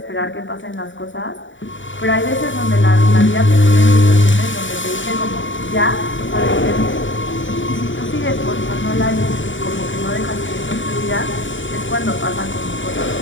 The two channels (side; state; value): right; late; 0.55 ms